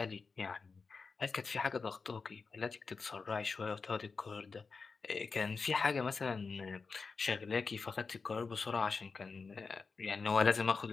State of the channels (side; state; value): right; quieter; 4.7 dB